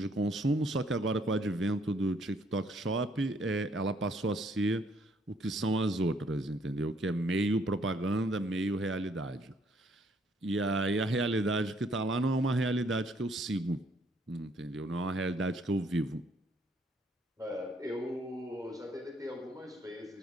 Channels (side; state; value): both; normal; correlation 0.66